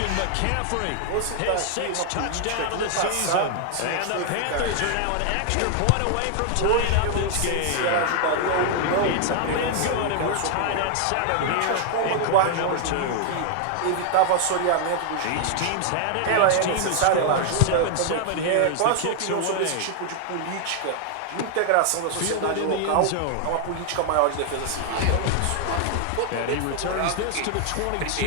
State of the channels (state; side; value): different; both; correlation 0.00